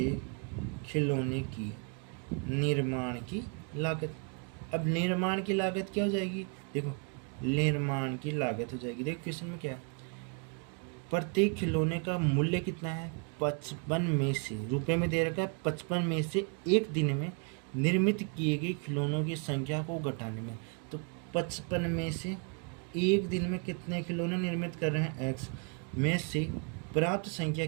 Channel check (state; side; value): quieter; left; 38.7 dB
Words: खिलौने की निर्माण की लागत। अब निर्माण की लागत क्या हो जाएगी, देखो निर्माण की लागत हो जाएगी, देखो क्वेश्चन में क्या है, प्रत्येक खिलौने का मूल्य कितना है, 55 में से, रुपए में दे रखा है 55 में से एक दिन में निर्मित किए गए खिलौनों की संख्या को घटाने में। तो 55 में से एक दिन में कितने खिलौने निर्मित कर रहे हैं, x में से प्राप्त संख्या